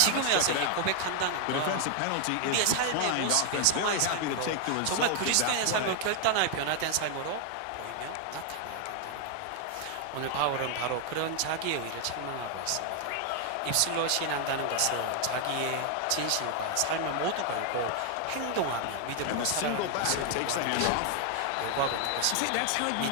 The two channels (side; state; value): both; different; correlation 0.00